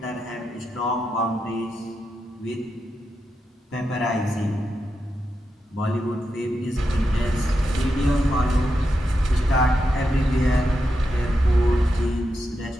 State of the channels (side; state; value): both; normal; correlation 0.86